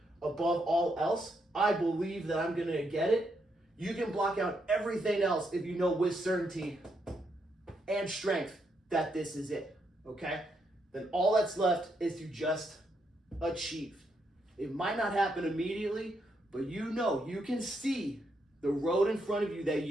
above all else, I believe that I'm gonna get it, you can block out everything else if you know with certainty and strength that this is it, okay? Then all that's left is to just achieve. It might not happen immediately, but you know, you can see the road in front of you that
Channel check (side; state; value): both; normal; correlation 0.79